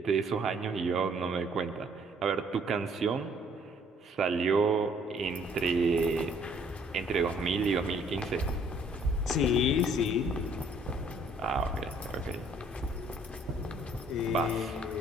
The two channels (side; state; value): both; normal; correlation 0.61